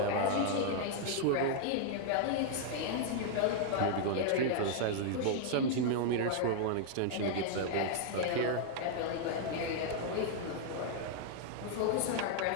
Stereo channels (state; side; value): different; both; correlation -0.01